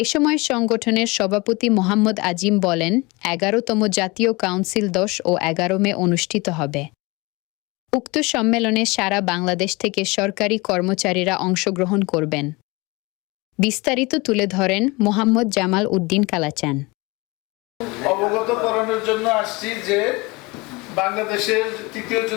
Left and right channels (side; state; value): right; quieter; 24.8 dB